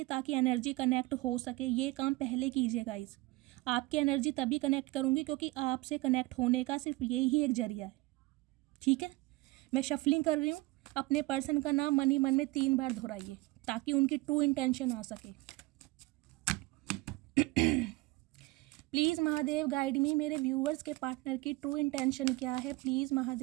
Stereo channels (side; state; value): left; quieter; 21.5 dB